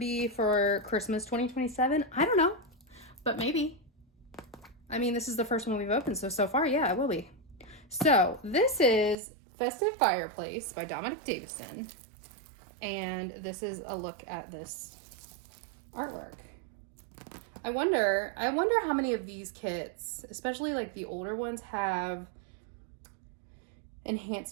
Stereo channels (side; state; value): left; drops out; at 9.2 s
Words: for Christmas 2027? I don't know, but maybe. I mean, this is the first one we've opened, so far, yeah, it will be. So this is Festive Fireplace by Dominic Davison. And this is a look at this artwork. I wonder how many of these kits, especially like the older ones, have